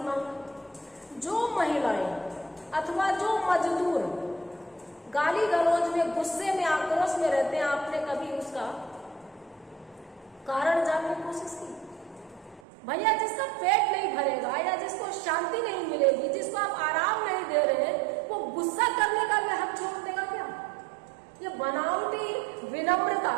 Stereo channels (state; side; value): drops out; left; at 12.6 s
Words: मांगा। जो महिलाएं अथवा जो मजदूर गाली गलौज में, गुस्से में, आक्रोश में रहते हैं, आपने कभी उसका कारण जानने की कोशिश की? भैया जिसका पेट नहीं भरेगा या जिसको शांति नहीं मिलेगी, जिसको आप आराम नहीं दे रहे हैं, वो गुस्सा करने का भी हक छोड़ देगा क्या? ये बनावटी विनम्रता